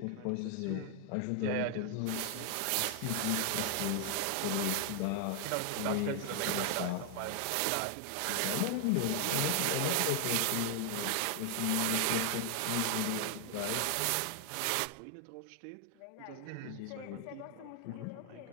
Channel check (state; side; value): different; both; correlation 0.00